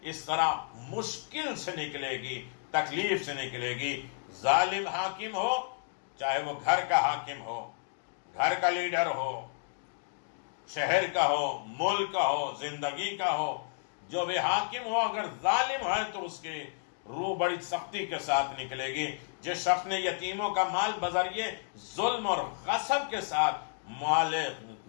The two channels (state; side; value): silent; right; digital silence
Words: اس طرح مشکل سے نکلے گی، تکلیف سے نکلے گی۔ ظالم حاکم ہو، چاہے وہ گھر کا حاکم ہو، گھر کا لیڈر ہو، شہر کا ہو، ملک کا ہو، زندگی کا ہو، جو بھی حاکم ہو اگر ظالم ہے تو اس کی روح بڑی سختی کے ساتھ نکلے گی۔ جس شخص نے یتیموں کا مال بذریعے ظلم اور غصب کے ساتھ مال